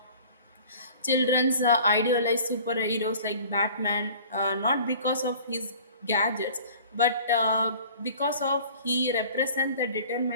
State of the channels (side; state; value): both; inverted; correlation -0.47